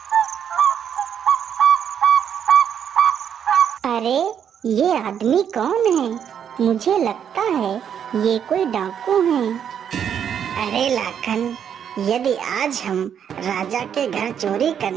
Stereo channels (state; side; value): quieter; left; 8.4 dB